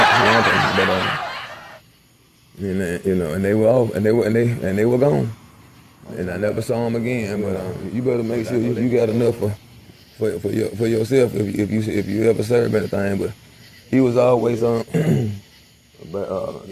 But you know, and they were off, and they were gone. And I never saw him again. But you better make sure you got enough for yourself if you ever serve anything. But he was always but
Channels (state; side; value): identical; both; correlation 1.00